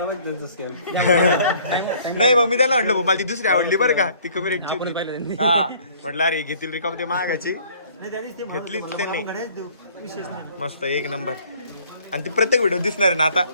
नाही मग मी त्याला म्हटलं मला ती दुसरी आवडली बरं का, ती कमी रेटची होती. हा म्हटलं अरे घेतील रिकाम ते मागाची, घेतलीच त्यांनी. मस्त एक नंबर. आणि ती प्रत्येक व्हिडिओ दिसणार आहे ना आता.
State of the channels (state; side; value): inverted; both; correlation -0.57